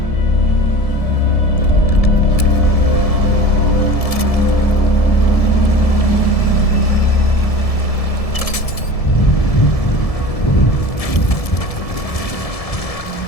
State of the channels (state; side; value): late; right; 1.7 ms